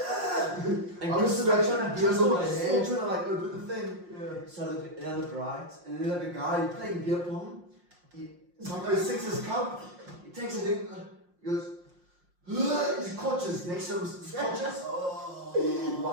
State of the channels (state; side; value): late; left; 5.6 ms